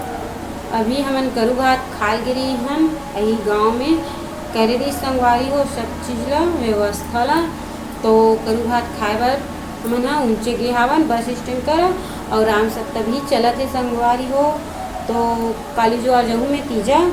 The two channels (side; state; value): both; identical; correlation 1.00